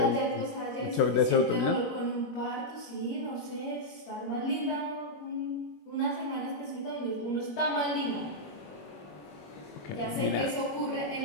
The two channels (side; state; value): right; late; 21 ms